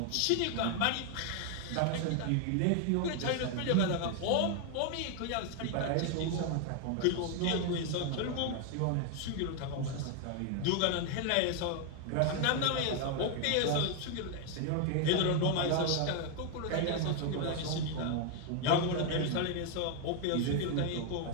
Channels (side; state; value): both; different; correlation 0.01